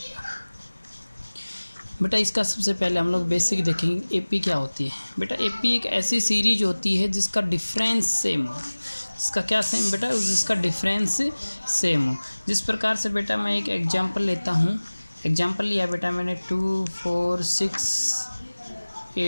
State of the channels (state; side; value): inverted; both; correlation -1.00